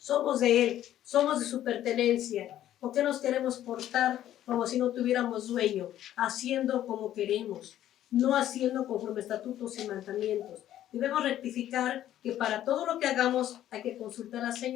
de Él. Somos de su pertenencia. ¿Por qué nos queremos portar como si no tuviéramos dueño? Haciendo como queremos, no haciendo conforme estatutos y mandamientos. Debemos rectificar que para todo lo que hagamos hay que consultar al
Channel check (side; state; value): right; quieter; 12.2 dB